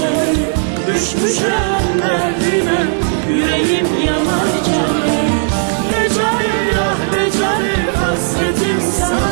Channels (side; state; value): left; silent; 58 dB below the other